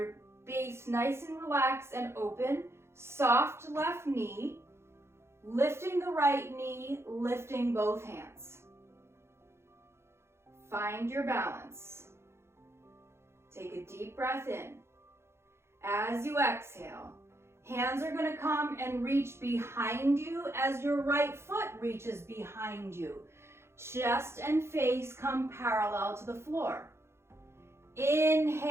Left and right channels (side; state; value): left; late; 0.12 ms